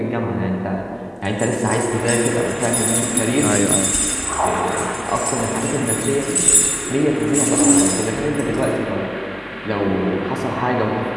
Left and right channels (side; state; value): both; identical; correlation 1.00